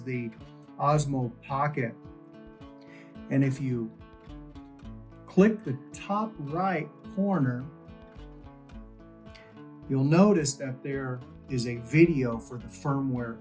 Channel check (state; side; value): identical; both; correlation 1.00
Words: the Osmo Pocket. And if you click the top right corner, you'll notice that there is a video for the firmware